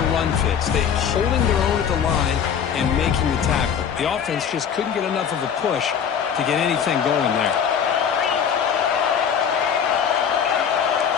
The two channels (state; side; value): quieter; right; 7.8 dB